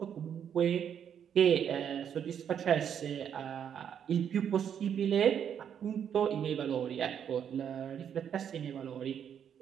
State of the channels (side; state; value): left; quieter; 8.5 dB